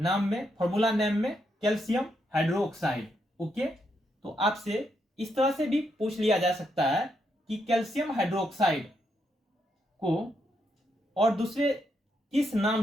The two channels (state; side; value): normal; both; correlation 0.79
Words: में, फॉर्मूला नेम में? Calcium hydroxide. ओके, तो आपसे इस तरह से भी पूछ लिया जा सकता है कि कैल्शियम हाइड्रोक्साइड को और दूसरे किस नाम